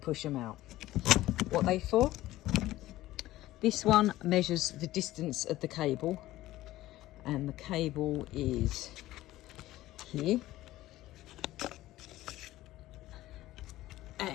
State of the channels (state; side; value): quieter; right; 15.9 dB